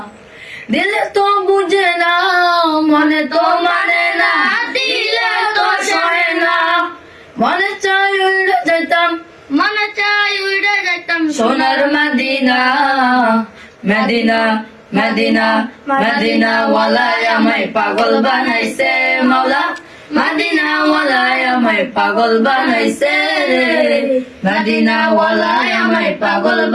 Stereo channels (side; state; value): both; identical; correlation 1.00